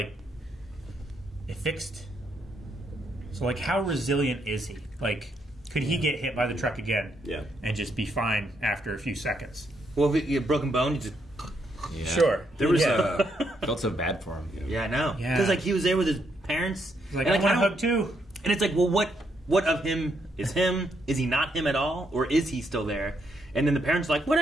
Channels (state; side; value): normal; both; correlation 0.76